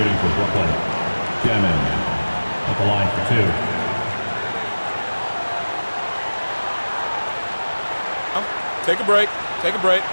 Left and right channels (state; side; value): inverted; both; correlation -1.00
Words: for Brooklyn. Dimon at the line for 2. Take a break. Take a break.